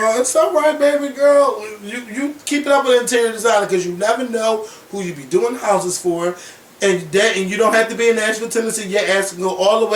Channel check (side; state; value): both; identical; correlation 1.00